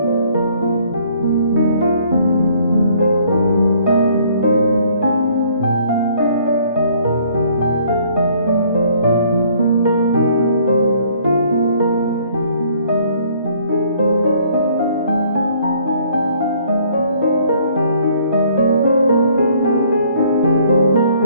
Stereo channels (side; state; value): both; inverted; correlation -0.61